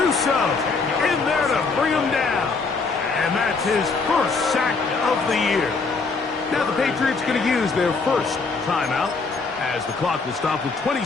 in there to bring him down. And that's his first sack of the year. Now the Patriots going to use their first timeout as the clock will stop with 20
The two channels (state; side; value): quieter; right; 4.4 dB